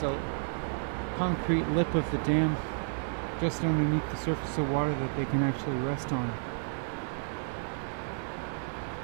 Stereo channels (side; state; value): left; silent; digital silence